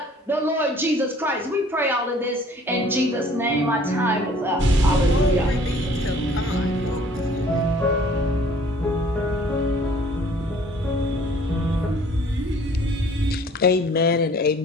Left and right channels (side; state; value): both; normal; correlation 0.54